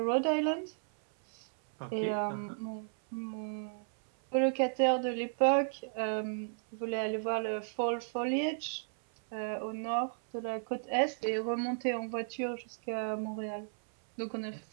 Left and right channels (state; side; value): silent; left; 55 dB below the other